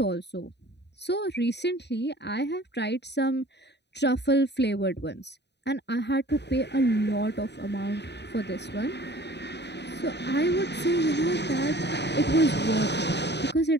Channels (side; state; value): right; late; 0.50 ms